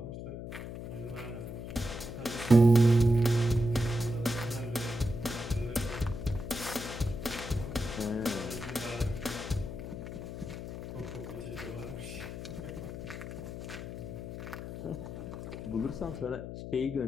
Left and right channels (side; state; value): left; noise; hum, 8 dB below the sound